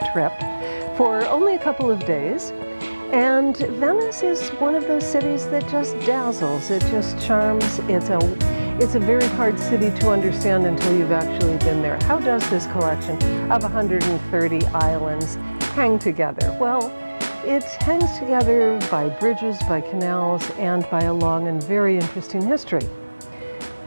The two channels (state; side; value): inverted; both; correlation -1.00